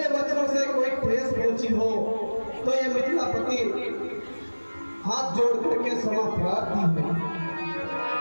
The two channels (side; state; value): both; inverted; correlation -1.00